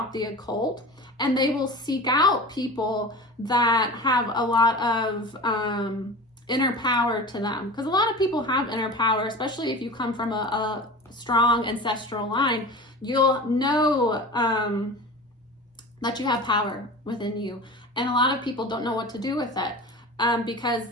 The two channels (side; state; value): both; normal; correlation 0.33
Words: the occult, and they will seek out people that have a lot of inner power to them. Because a lot of people have inner power, especially if you come from a strong ancestral line. You'll know that you have power within you. And a lot of people don't know what to do with it because,